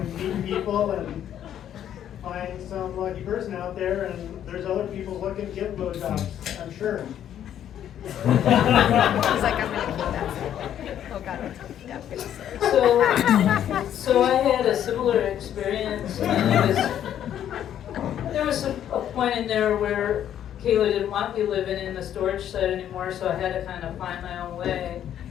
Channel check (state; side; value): quieter; right; 10.4 dB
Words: meet people and find some lucky person out there, and there's other people looking to get blowjobs, I'm sure. He's like, I'm gonna keep that. Oh God. Yeah. So I had a similar experience. And there was a point in there where Kayla didn't want me living in the storage shed anymore, so I had to kind of find my own way.